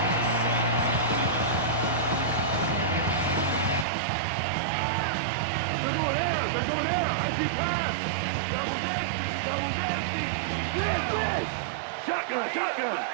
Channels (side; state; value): left; drops out; at 3.9 s